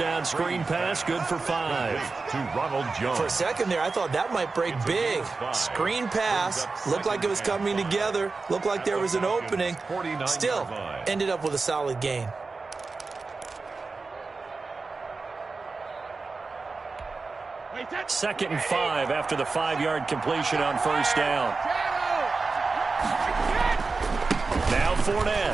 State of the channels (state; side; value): quieter; left; 4.1 dB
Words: screen pass, good for 5. To Ronald Jones. For a second there, I thought that might break big. Screen pass. Looked like it was coming together. Looked like there was an opening. Still, ended up with a solid gain. Second and 5 after the 5-yard completion on first down. Now